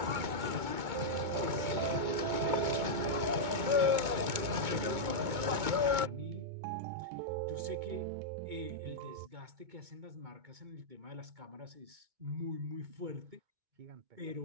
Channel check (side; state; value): left; late; 2.2 ms